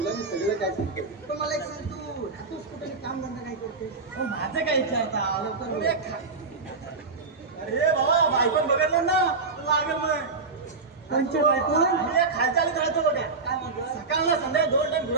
मी सगळं काय सांगतो पण मला एक सांग तू राहतोस कुठे काम धंदा काय करतोस माझं काय विचारता लवकर अरे बाबा बायकोन बघितलं ना लागेल मग कोणच्या बायकोन? खालच्या आलीत राहतो बघा काय म्हणतो सकाळला संध्याकाळी 2 टाइम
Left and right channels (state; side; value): quieter; left; 4.2 dB